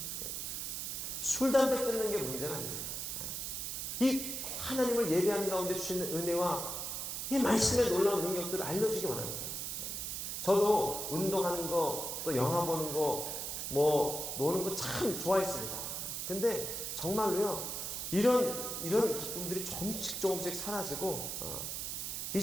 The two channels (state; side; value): noise; right; hiss, 4 dB below the sound